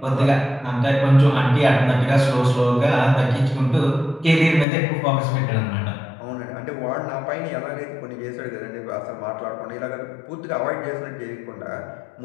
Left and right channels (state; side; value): drops out; right; at 4.7 s